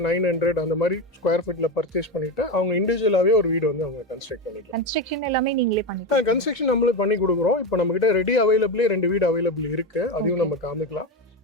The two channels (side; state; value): both; normal; correlation 0.16